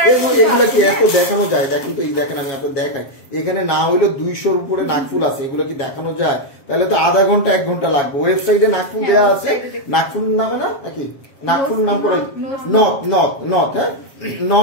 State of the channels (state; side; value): late; right; 7.5 ms